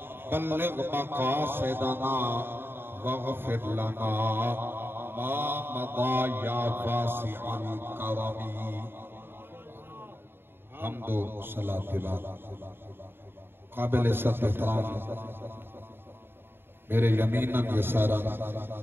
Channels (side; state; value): left; late; 0.11 ms